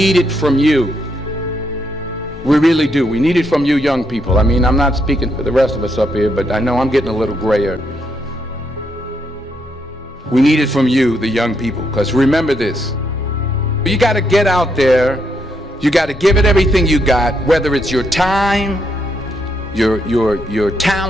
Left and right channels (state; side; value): normal; both; correlation 0.77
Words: it from you. We really do. We need it from you young people. I mean, I'm not speaking for the rest of us up here, but I know I'm getting a little grayer. We need it from you, the young people, because remember this. You got to get out there. You got to give it everything you got, whether it's your time, your